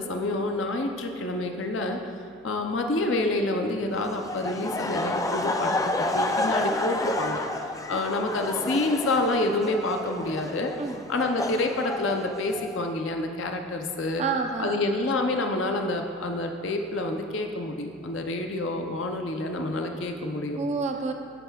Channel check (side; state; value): left; noise; hum, 29 dB below the sound